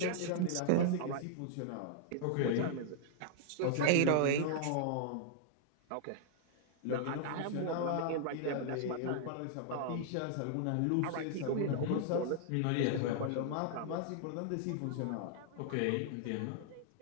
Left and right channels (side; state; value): both; different; correlation -0.01